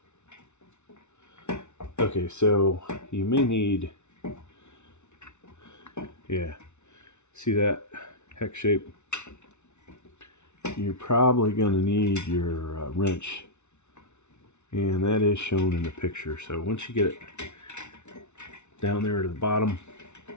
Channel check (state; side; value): late; right; 0.82 ms